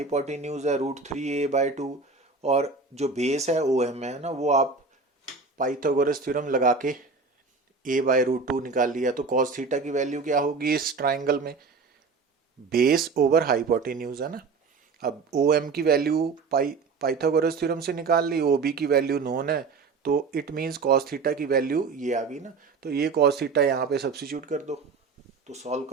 है √3a/2, और जो बेस है ओ एम है ना, वो आप पाइथागोरस थ्योरम लगा के a/√2 निकाल लिया। तो कॉस थीटा की वैल्यू क्या होगी इस ट्राइंगल में, बेस ओवर हाइपोटेन्यूज है ना। अब ओ एम की वैल्यू पाइथागोरस थ्योरम से निकाल ली, ओ बी की वैल्यू नोन है, तो इट मीन्स कॉस थीटा की वैल्यू ये आ गई ना। तो ये कॉस थीटा यहाँ पे सब्सिट्यूट कर दो, तो सॉल्व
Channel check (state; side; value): quieter; left; 4.5 dB